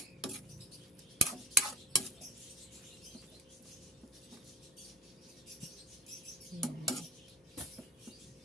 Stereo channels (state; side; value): normal; both; correlation 0.35